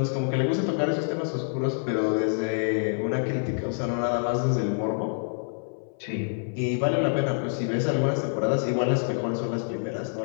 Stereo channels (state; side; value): silent; right; 60 dB below the other